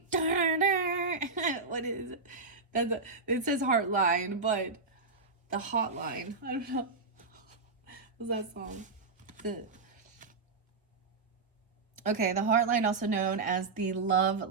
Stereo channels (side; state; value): left; quieter; 4.2 dB